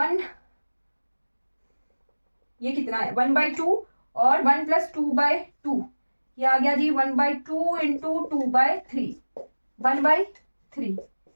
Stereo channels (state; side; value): inverted; both; correlation -1.00